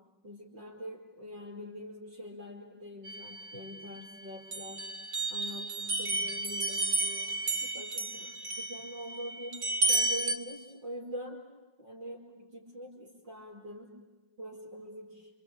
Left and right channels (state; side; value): late; left; 5.4 ms